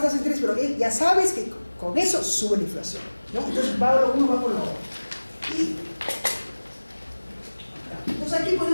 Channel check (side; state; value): both; inverted; correlation -1.00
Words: tasas de interés, pero ya sabes que con eso sube la inflación, ¿no? Entonces uno va por lo otro. Entonces aquí